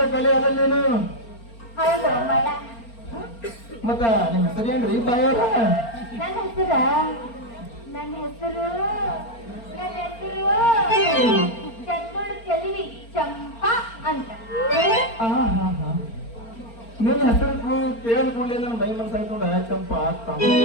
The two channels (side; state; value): right; late; 4.4 ms